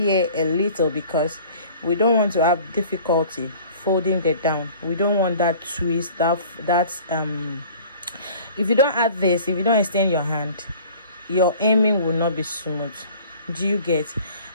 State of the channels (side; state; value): both; inverted; correlation -0.47